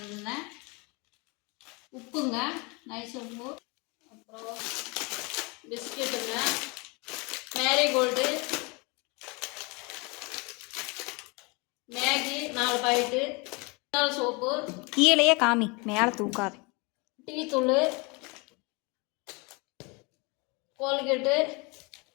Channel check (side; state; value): right; quieter; 28.7 dB